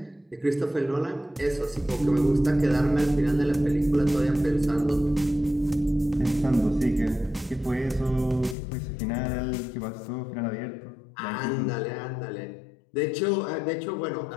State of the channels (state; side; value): drops out; right; at 8.6 s